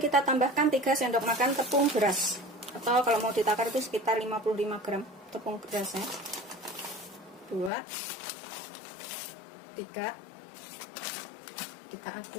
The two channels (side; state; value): right; drops out; at 7.7 s